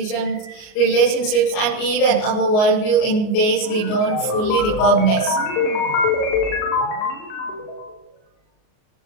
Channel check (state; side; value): late; right; 38 ms